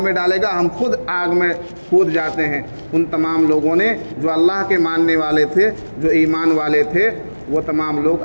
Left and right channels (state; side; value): inverted; both; correlation -1.00